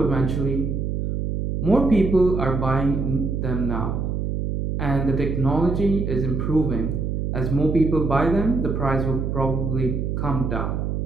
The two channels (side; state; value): right; noise; hum, 1 dB below the sound